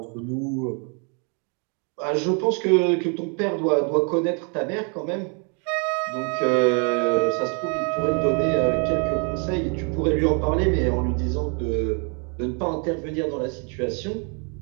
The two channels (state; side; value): quieter; left; 37.6 dB